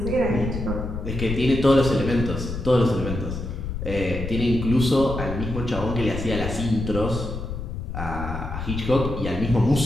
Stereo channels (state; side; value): noise; left; rumble, 6 dB below the sound